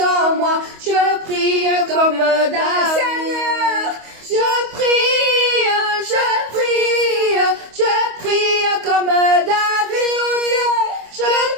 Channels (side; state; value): left; late; 25 ms